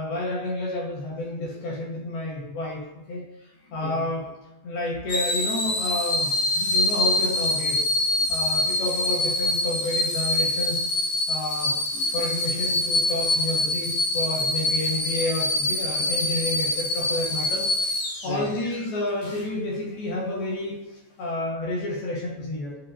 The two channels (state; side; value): late; right; 14 ms